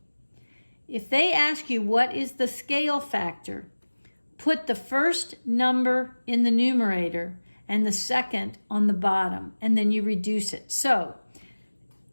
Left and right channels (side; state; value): both; inverted; correlation -1.00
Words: If they ask you what is the scale factor, put the first number in the numerator and the second on the bottom, and then you reduce it. So